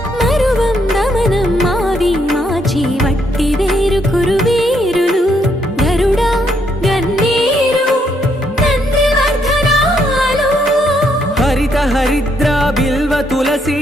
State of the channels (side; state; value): both; normal; correlation 0.74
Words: వట్టి వేరు కురువేరులు గరుడా గన్నేరు నందివర్ధనాలు హరిత హరిద్ర బిల్వ